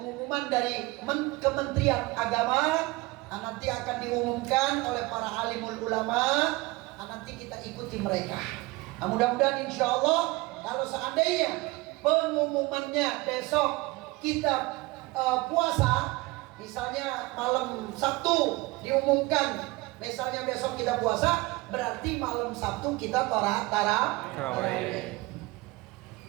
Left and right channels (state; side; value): quieter; left; 22.0 dB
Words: dari Kementerian Agama. Nah, nanti akan diumumkan oleh para alimul ulama. Nah, nanti kita ikuti mereka. Nah, mudah-mudahan insya Allah kalau seandainya pengumumannya besok kita puasa, misalnya malam Sabtu diumumkan, misalnya besok kita puasa, berarti malam Sabtu kita tarawih.